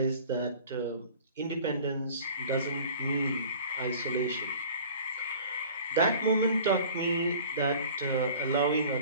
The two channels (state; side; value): inverted; both; correlation -0.45